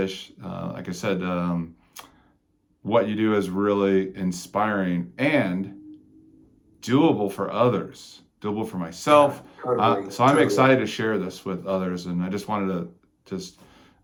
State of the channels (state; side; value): identical; both; correlation 1.00